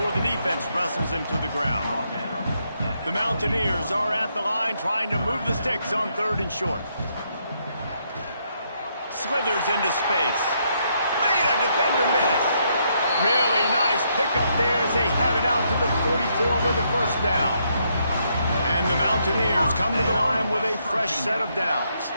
the defense wrestles him to the ground. The Mountaineers are at the line trying to move the sticks on third and short. Slithers into space. Made a defender miss. Really nice pickup there as they have it out to the 44 with the first down. And the Mountaineers come to the line with a fresh set of downs.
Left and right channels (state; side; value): inverted; both; correlation -0.75